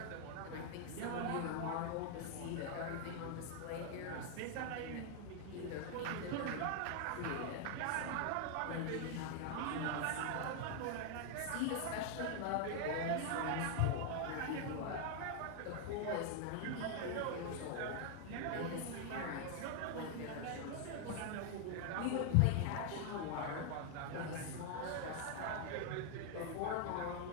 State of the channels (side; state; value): both; different; correlation 0.00